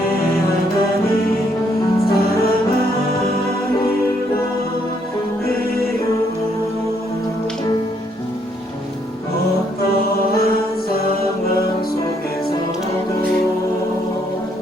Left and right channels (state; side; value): normal; both; correlation 0.71